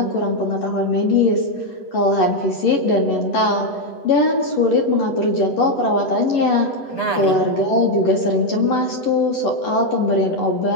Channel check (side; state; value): right; late; 8.0 ms